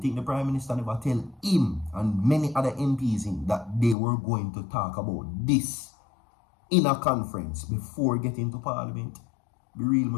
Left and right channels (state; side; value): drops out; right; at 4.0 s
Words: the Prime Minister never tell him and many other MPs in that they were going to talk about this in a conference before getting to Parliament? Be real,